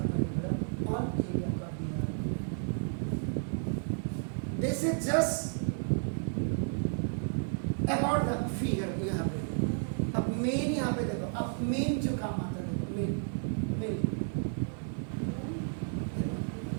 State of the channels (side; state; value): left; silent; 56 dB below the other